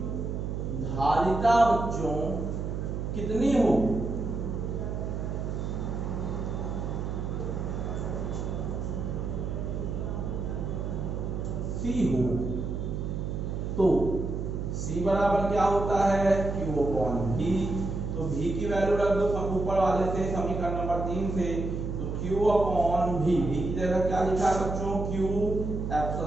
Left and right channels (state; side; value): noise; right; hum, 3 dB below the sound